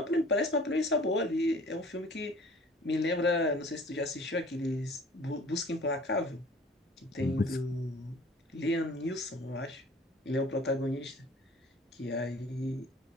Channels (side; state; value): both; normal; correlation 0.49